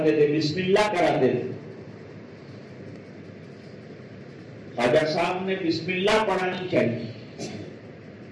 تھے، بسم اللہ کراتے تھے، خواجہ صاحب نے بسم اللہ پڑھانی چاہیے،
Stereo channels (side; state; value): both; identical; correlation 1.00